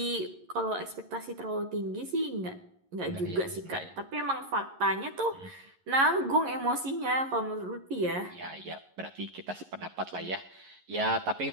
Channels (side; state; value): left; late; 11 ms